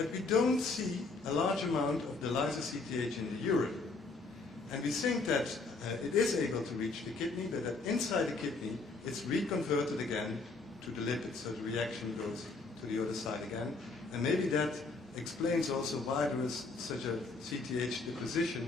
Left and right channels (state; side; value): quieter; right; 3.8 dB